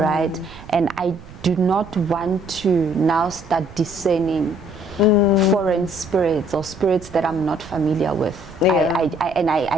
And I do not want to now start discerning foreign spirits or spirits that I'm not familiar with.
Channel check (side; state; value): right; noise; rumble, 18 dB below the sound